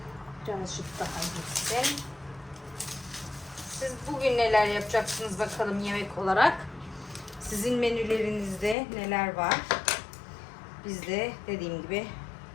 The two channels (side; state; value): right; drops out; at 8.8 s